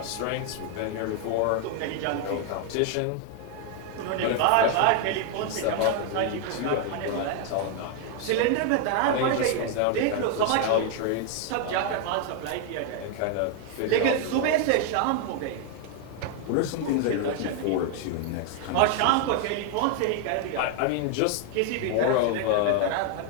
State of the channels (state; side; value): different; both; correlation 0.00